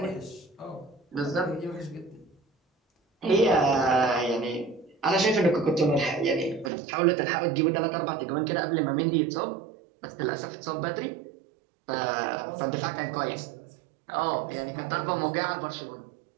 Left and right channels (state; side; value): drops out; left; at 6.7 s